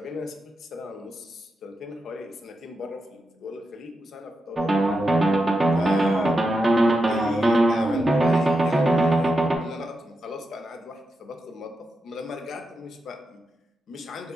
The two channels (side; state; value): both; normal; correlation 0.87